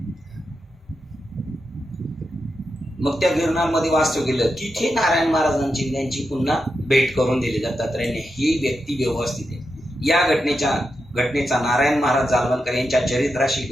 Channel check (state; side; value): normal; both; correlation 0.87